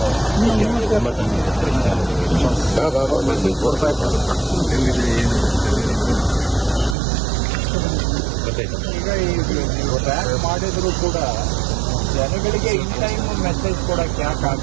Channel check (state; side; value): drops out; left; at 7.0 s